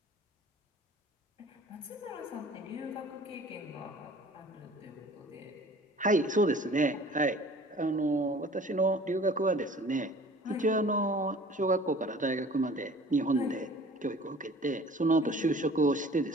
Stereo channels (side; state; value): both; normal; correlation 0.47